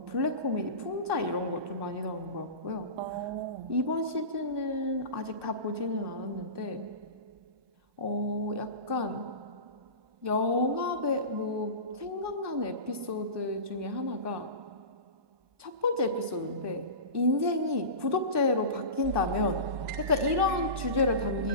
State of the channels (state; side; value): late; left; 1.2 ms